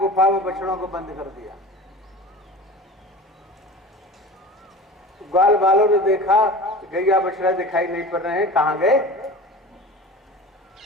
में बछड़ों को बंद कर दिया। ग्वाल बालों ने देखा गैया बछड़ा दिखाई नहीं पड़ रहे हैं, कहां गए?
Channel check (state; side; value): normal; both; correlation 0.35